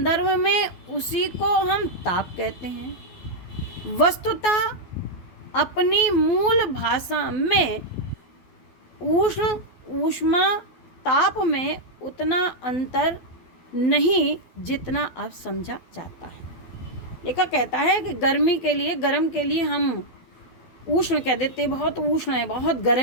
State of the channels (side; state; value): right; late; 12 ms